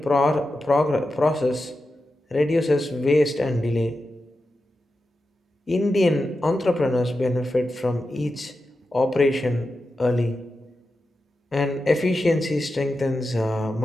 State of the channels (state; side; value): normal; both; correlation 0.90